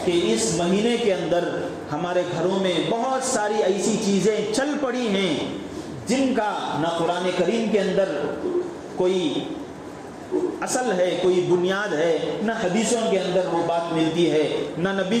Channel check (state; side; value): identical; both; correlation 1.00